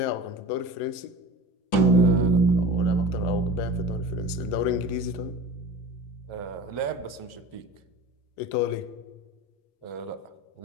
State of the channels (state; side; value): late; right; 10 ms